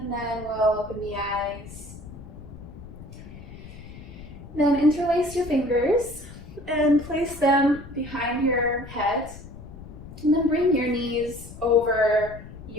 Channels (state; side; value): noise; left; rumble, 15 dB below the sound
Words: then we'll open the eyes. Then interlace your fingers and place them behind your head. And then bring your knees over